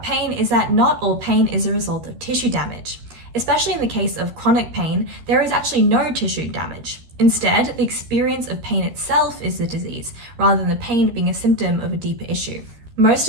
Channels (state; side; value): late; left; 13 ms